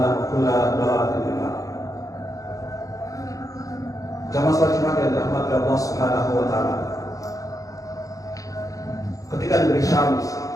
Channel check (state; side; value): late; right; 0.16 ms